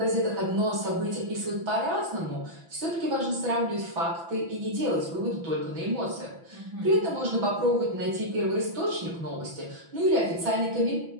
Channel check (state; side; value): late; left; 6.0 ms